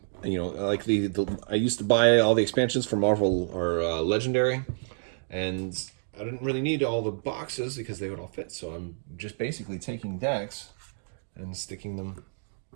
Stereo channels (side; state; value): left; silent; digital silence